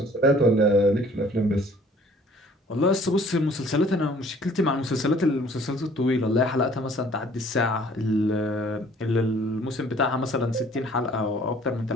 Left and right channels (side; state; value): both; normal; correlation 0.55